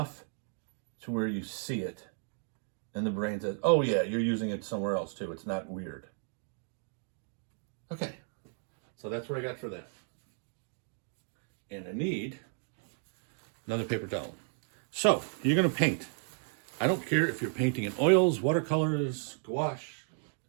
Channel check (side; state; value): left; silent; 55 dB below the other